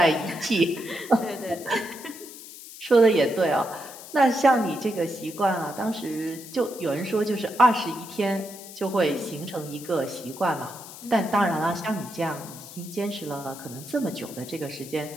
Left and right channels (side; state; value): left; noise; hiss, 15 dB below the sound